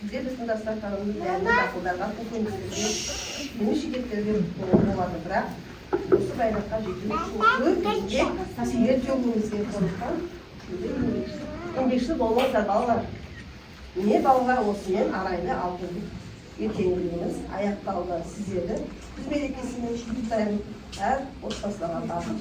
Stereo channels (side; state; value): both; identical; correlation 1.00